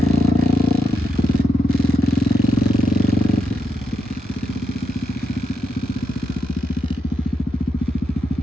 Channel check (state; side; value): normal; both; correlation 0.83